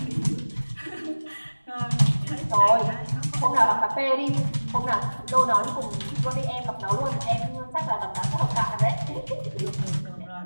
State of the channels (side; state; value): both; inverted; correlation -1.00